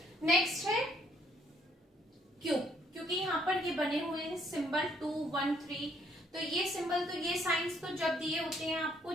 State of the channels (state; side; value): normal; both; correlation 0.67